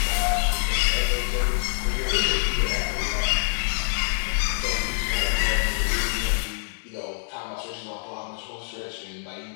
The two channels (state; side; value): silent; right; digital silence